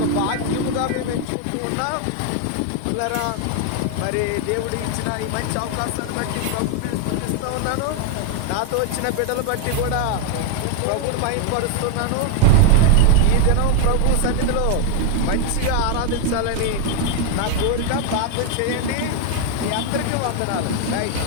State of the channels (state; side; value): different; both; correlation 0.01